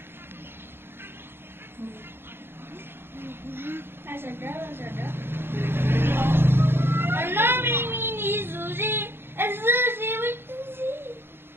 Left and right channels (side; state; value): left; late; 0.11 ms